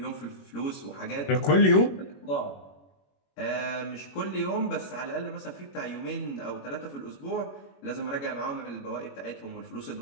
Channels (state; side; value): late; right; 21 ms